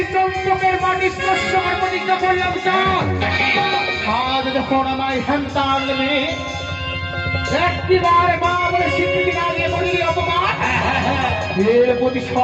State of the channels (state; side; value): identical; both; correlation 1.00